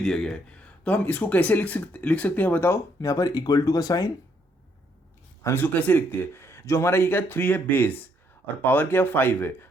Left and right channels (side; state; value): both; normal; correlation 0.71